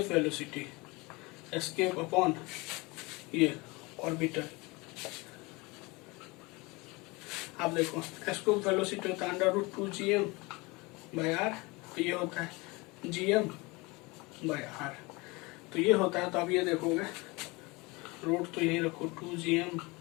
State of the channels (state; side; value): quieter; right; 25.0 dB